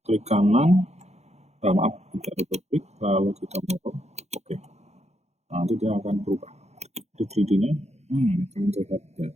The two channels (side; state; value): left; late; 0.32 ms